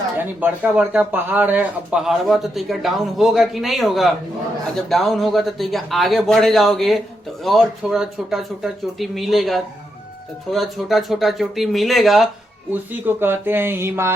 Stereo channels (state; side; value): normal; both; correlation 0.82